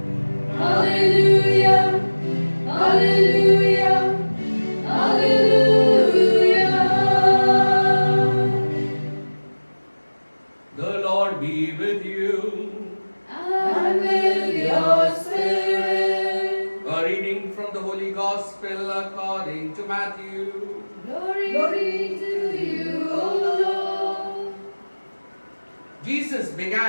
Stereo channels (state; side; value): inverted; both; correlation -1.00